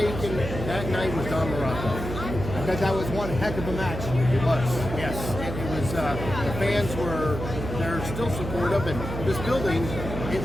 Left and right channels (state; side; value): noise; right; hum, 6 dB below the sound